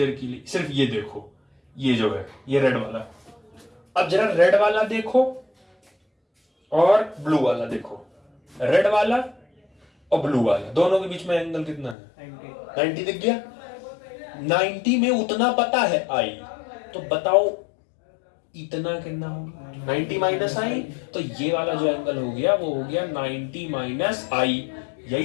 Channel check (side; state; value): right; drops out; at 12.0 s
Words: के लिए सिर्फ ये देखो, ये जो है ये रेड वाला। अब जरा रेड वाला देखो और ब्लू वाला देखो, रेड वाला और ब्लू वाला, दोनों के बीच में एंगल कितना है? 90 दिख गया? 90 में उतना पता है आई, तो बताओ इतना कितना होगा? 90 माइनस आई, तो ये वाला जो एंगल हो गया वो हो गया 90 माइनस आई।